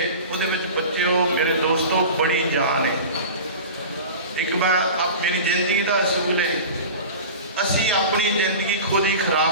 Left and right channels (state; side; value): inverted; both; correlation -0.34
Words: ਉਹਦੇ ਵਿੱਚ ਬੱਚਿਓ ਮੇਰੇ ਦੋਸਤੋ ਬੜੀ ਜਾਨ ਹੈ। ਇੱਕ ਵਾਰ ਮੇਰੀ ਜ਼ਿੰਦਗੀ ਦਾ ਅਸੂਲ ਹੈ, ਅਸੀਂ ਆਪਣੀ ਜ਼ਿੰਦਗੀ ਖੁਦ ਹੀ